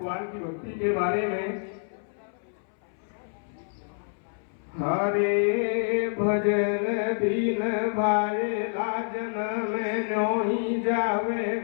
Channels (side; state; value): right; silent; 60 dB below the other